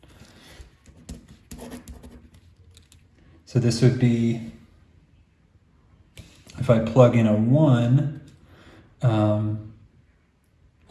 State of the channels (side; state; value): both; identical; correlation 1.00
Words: So this would be, if I plug in a 1,